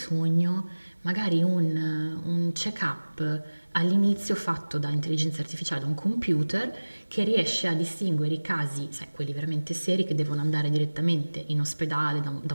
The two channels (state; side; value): inverted; both; correlation -1.00